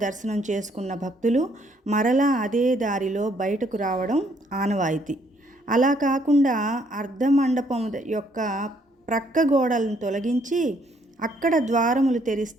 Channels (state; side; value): normal; both; correlation 0.68